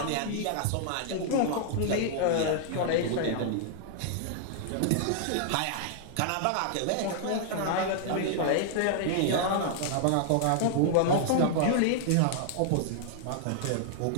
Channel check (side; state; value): both; different; correlation -0.01